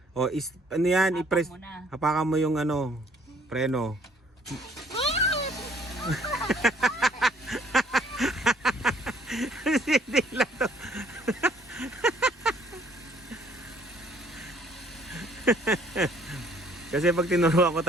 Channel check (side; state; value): both; normal; correlation 0.60